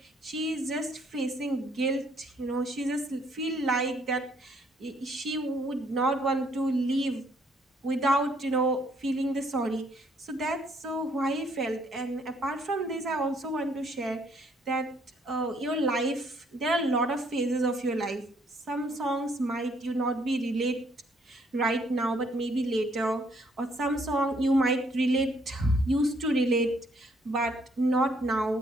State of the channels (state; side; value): normal; both; correlation 0.67